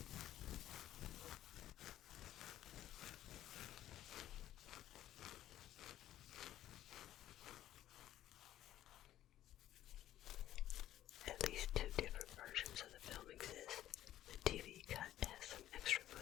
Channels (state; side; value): quieter; right; 12.9 dB